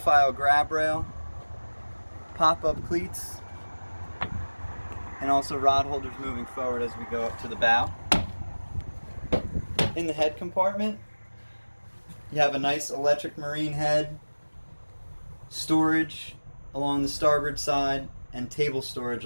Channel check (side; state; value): both; inverted; correlation -1.00